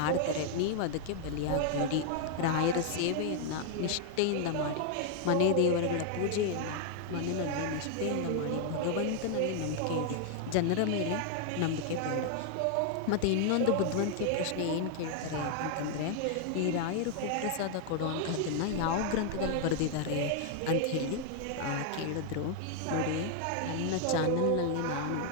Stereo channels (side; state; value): both; different; correlation 0.00